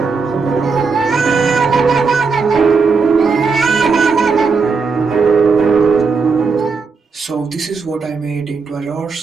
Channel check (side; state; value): left; quieter; 4.8 dB